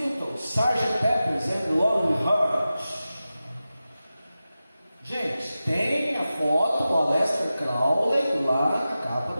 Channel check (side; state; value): both; inverted; correlation -0.94